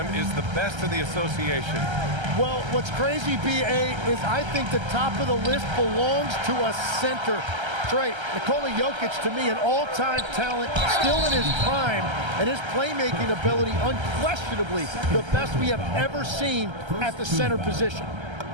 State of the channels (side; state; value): left; late; 1.3 ms